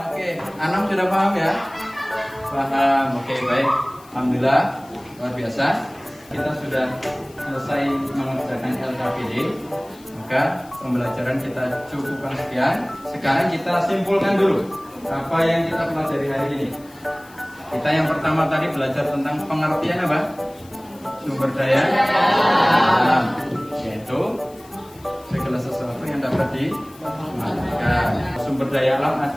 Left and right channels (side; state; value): left; noise; hiss, 25 dB below the sound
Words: Oke, Anam sudah paham ya? Paham. Oke, baik. Alhamdulillah luar biasa. Kita sudah selesai mengerjakan LKPD. Maka pembelajaran kita cukupkan sekian. Sekarang kita simpulkan dulu apa yang kita pelajari hari ini. Kita yang pertama tadi belajar tentang pengertian apa? Sumber daya alam, yaitu segala sesuatu yang dapat dimanfaatkan. Sumber daya alam